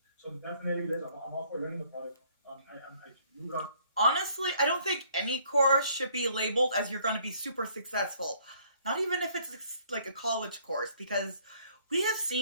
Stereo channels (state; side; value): inverted; both; correlation -0.63